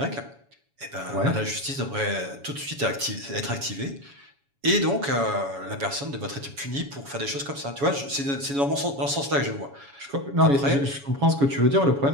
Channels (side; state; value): left; late; 7.1 ms